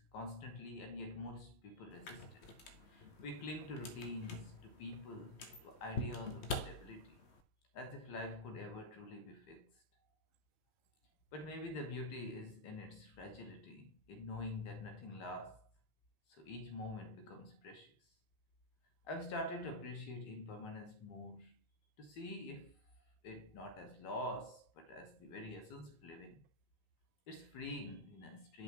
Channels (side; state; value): right; late; 3.1 ms